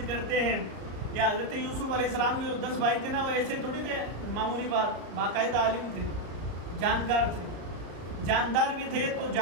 کرتے ہیں۔ یا حضرت یوسف علیہ السلام کے جو 10 بھائی تھے نا، وہ ایسے تھوڑی تھے معمولی بات، باقاعدہ عالم تھے، جانکار تھے، جاندار بھی تھے تو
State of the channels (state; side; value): late; left; 34 ms